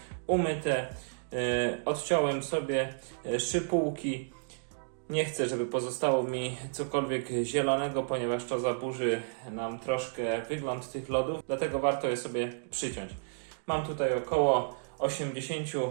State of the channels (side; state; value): left; silent; digital silence